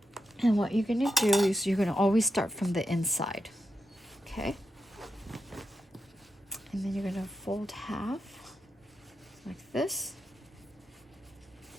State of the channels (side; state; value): both; normal; correlation 0.86